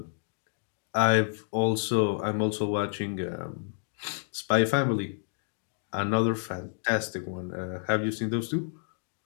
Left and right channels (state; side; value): silent; right; digital silence